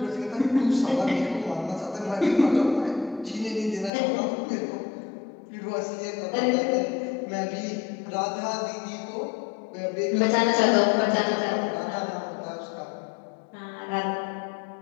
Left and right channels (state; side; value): drops out; right; at 3.9 s